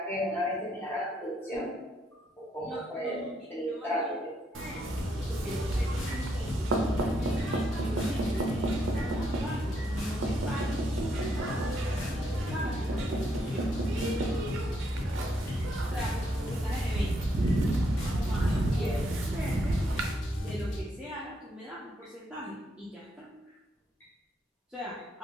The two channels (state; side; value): normal; both; correlation 0.76